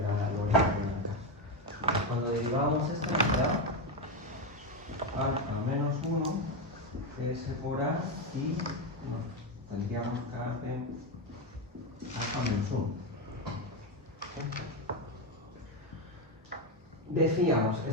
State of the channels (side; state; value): both; normal; correlation 0.10